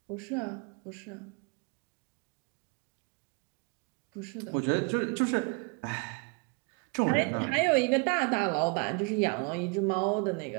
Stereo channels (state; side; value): quieter; left; 32.0 dB